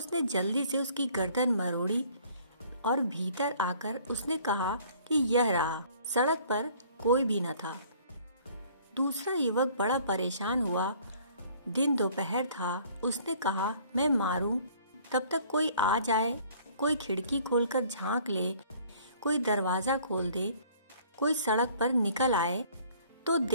जल्दी से उसकी गर्दन मरोड़ी और भीतर आकर उसने कहा कि यह रहा, सड़क पर कोई भी न था। दूसरा युवक बड़ा परेशान हुआ। दिन दोपहर था। उसने कहा, मैं मारूं, तब तक कोई आ जाए, कोई खिड़की खोलकर झांक ले, कोई दरवाजा खोल दे, कोई सड़क पर निकल आए तो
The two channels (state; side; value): inverted; both; correlation -0.56